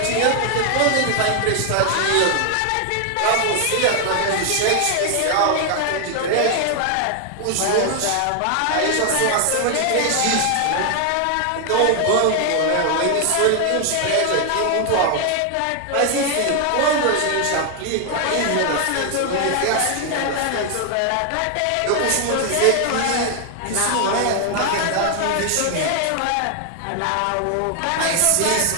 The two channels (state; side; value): different; both; correlation 0.00